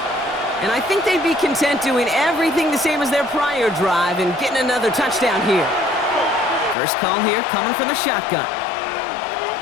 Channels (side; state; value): right; drops out; at 6.8 s